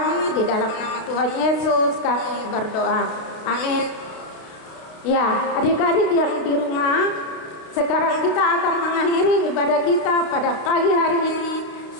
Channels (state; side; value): late; right; 32 ms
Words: di dalam nama Tuhan Yesus kami berdoa. Amin. Ya, adik-adik yang di rumah, sekarang kita akan mengakhiri ibadah kita pada pagi hari ini.